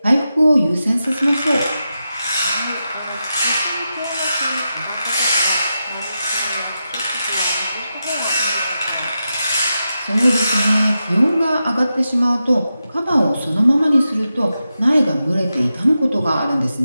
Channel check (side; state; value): both; inverted; correlation -0.89